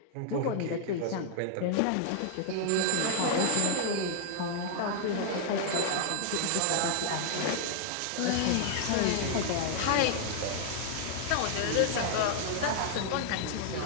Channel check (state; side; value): different; both; correlation -0.01